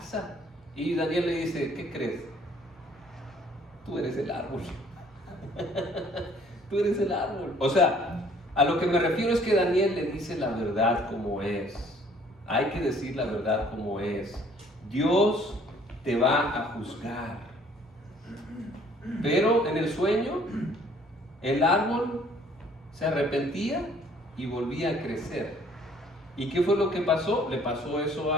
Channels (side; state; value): both; normal; correlation 0.58